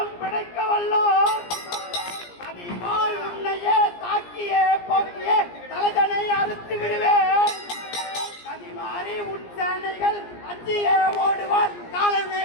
பிழைக்க வல்லோர் அதிபால் உன்னையே தாக்கியே போக்கியே தலைதனை அறுத்து விடுவேன். கதிமாறி உன் சேனைகள் அஞ்சியே ஓடுவார் காலமே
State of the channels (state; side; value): late; right; 17 ms